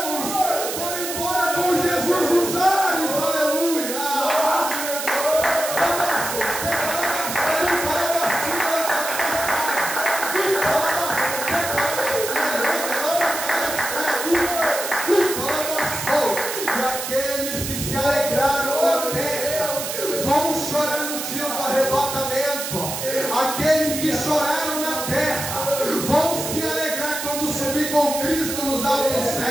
foram embora com Jesus nos ares. Aleluia. E aqueles que se alegraram na terra vão chorar no dia do arrebatamento. Aqueles que choraram na terra vão se alegrar quando subir com Cristo nos altos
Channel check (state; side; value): noise; right; hiss, 5 dB below the sound